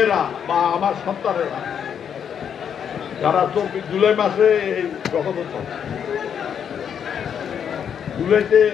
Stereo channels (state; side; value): quieter; right; 8.1 dB